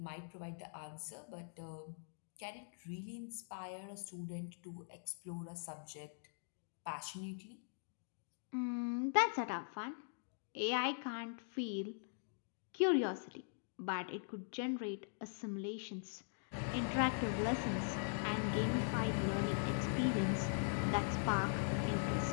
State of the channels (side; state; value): right; silent; digital silence